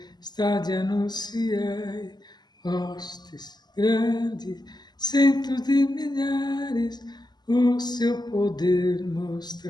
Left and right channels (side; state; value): right; late; 0.20 ms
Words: anunciai. Hostes grandes, centos de milhares, o seu poder